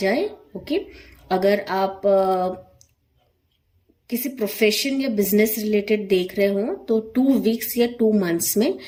ओके। अगर आप किसी प्रोफेशन या बिजनेस रिलेटेड देख रहे हो तो 2 वीक्स या 2 मंथ्स में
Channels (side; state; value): both; identical; correlation 1.00